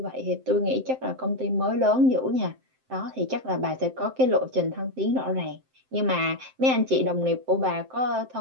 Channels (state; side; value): late; left; 7.7 ms